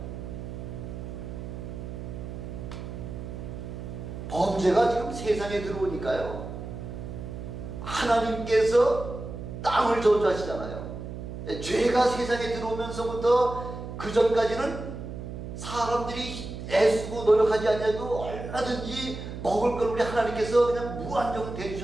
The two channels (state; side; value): noise; right; hum, 8 dB below the sound